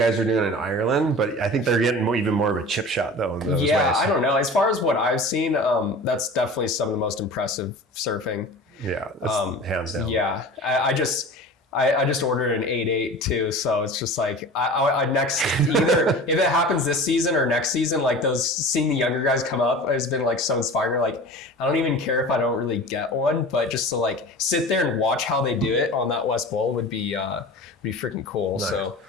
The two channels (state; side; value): normal; both; correlation 0.37